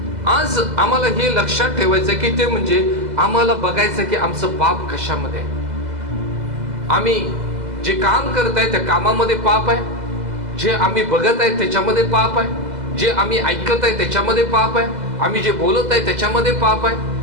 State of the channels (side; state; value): left; late; 2.0 ms